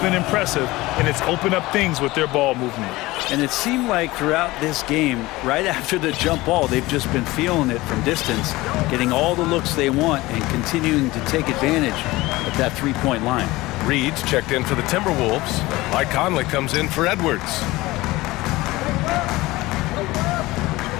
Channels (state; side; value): quieter; right; 19.7 dB